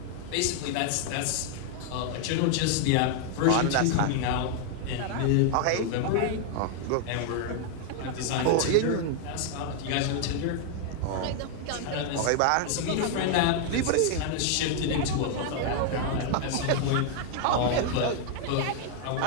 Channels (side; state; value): both; different; correlation 0.00